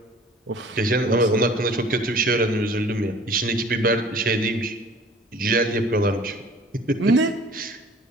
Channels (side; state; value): both; normal; correlation 0.49